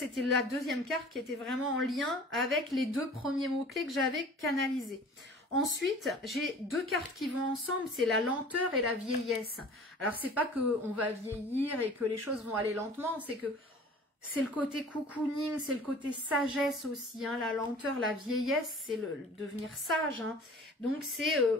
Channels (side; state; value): both; normal; correlation 0.45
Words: la deuxième carte qui était vraiment en lien avec les deux premiers mots-clés que j'avais canalisés. Ensuite, j'ai deux cartes qui vont ensemble, c'est la lenteur et la vieillesse. Alors, c'est pas qu'on va vieillir et que les choses vont aller lentement, c'est que c'est le côté cocooning, c'est le côté sagesse aussi, hein, la lenteur, la vieillesse, c'est le devenir sage. Hein. Donc, c'est